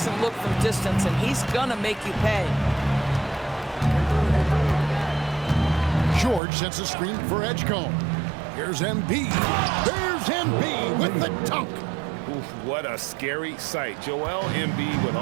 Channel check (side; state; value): left; drops out; at 6.4 s